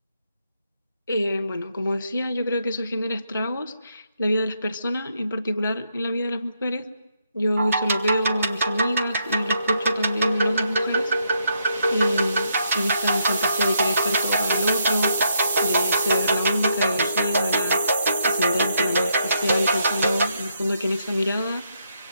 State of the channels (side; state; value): both; inverted; correlation -0.77